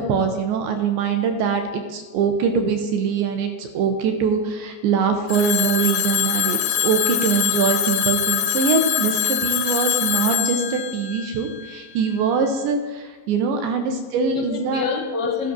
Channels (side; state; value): left; late; 14 ms